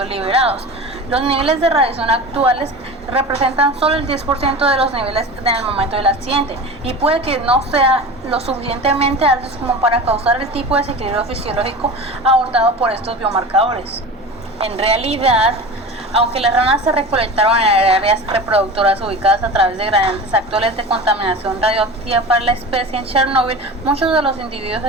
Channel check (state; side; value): normal; both; correlation 0.32